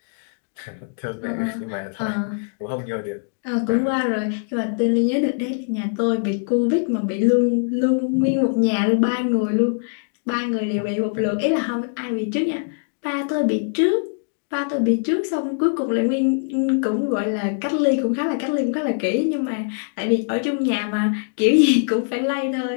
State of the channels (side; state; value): right; silent; digital silence